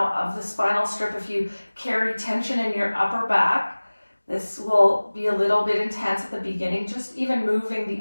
of the spinal strip. If you carry tension in your upper back, this will be a little bit intense at the beginning, just even moving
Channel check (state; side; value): inverted; both; correlation -1.00